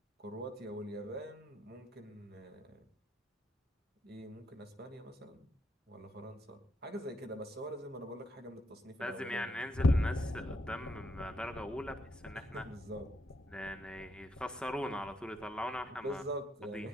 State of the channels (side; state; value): both; normal; correlation 0.78